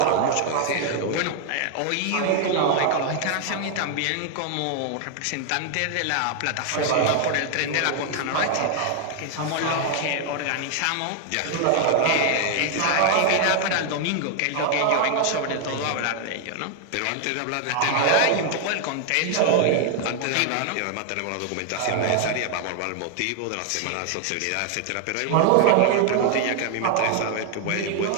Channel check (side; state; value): both; different; correlation 0.00